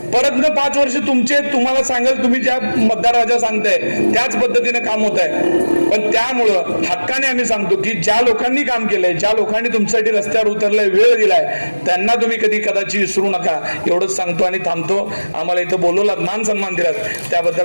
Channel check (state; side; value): inverted; both; correlation -1.00